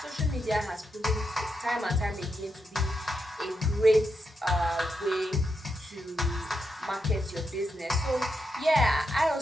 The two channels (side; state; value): both; normal; correlation 0.84